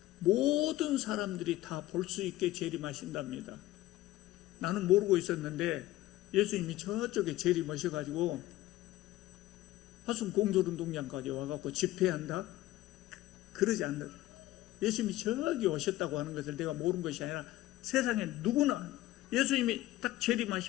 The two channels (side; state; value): right; quieter; 16.1 dB